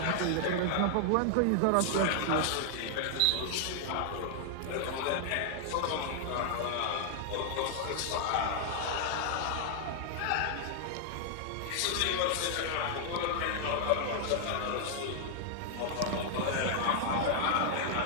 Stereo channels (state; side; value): different; both; correlation 0.00